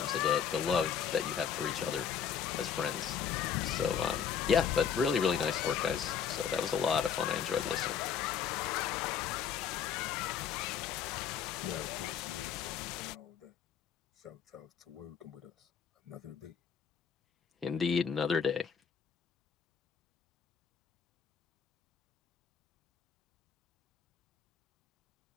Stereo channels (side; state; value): right; quieter; 7.5 dB